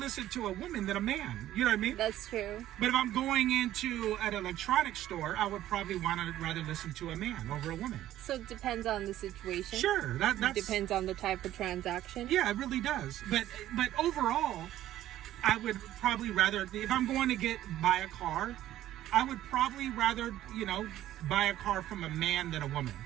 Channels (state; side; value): quieter; left; 13.3 dB